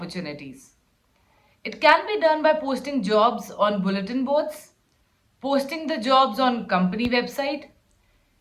It can be done by posting jobs on bulletin boards, posting the jobs on company website,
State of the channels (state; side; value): identical; both; correlation 1.00